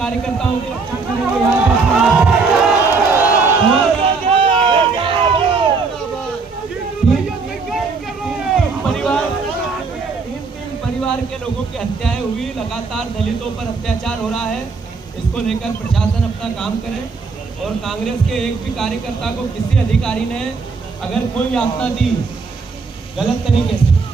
की रक्षा करेंगे। तीन परिवार के लोगों की हत्याएं हुई, लगातार दलितों पर अत्याचार हो रहा है। इसको लेकर प्रशासन अपना काम करे और कांग्रेस के एक भी कार्यकर्ता को किसी अधिकारी ने अगर कोई यातना दी गलत तरीके से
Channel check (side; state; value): left; quieter; 4.6 dB